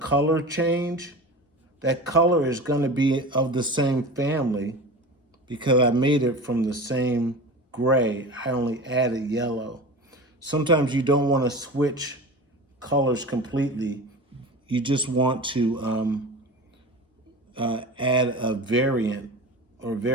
change, that color is going to be of the same family because I made it from the same gray. I only added yellow. Sometimes you don't want to switch colors completely. You just want to add a variant or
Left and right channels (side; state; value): both; normal; correlation 0.32